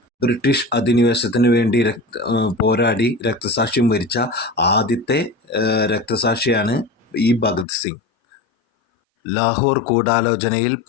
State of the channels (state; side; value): drops out; right; at 7.7 s